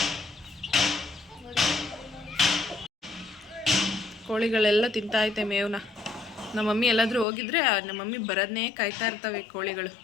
ಕೋಳಿಗಳೆಲ್ಲ ತಿಂತಾಯ್ತೆ ಮೇವನ್ನ. ನಮ್ಮ ಮಮ್ಮಿ ಎಲ್ಲಾದರೂ ಹೋಗಿದ್ರೆ ನಮ್ಮ ಮಮ್ಮಿ ಬರೋದನ್ನೇ ಕಾಯ್ತಾ ಇರ್ತವೆ ಕೋಳಿಗಳು.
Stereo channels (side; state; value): right; drops out; at 7.2 s